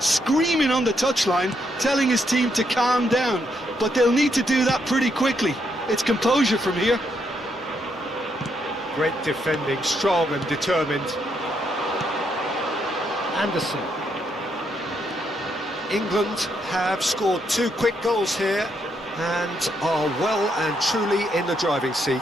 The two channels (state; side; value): normal; both; correlation 0.77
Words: on the touchline, telling his team to calm down. But they'll need to do that pretty quickly. It's composure from here. Great defending, strong and determined. Anderson. England have scored 2 quick goals here and are well and truly in the driving